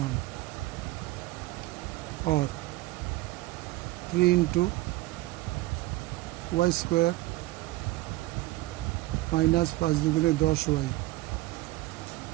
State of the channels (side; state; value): left; quieter; 18.7 dB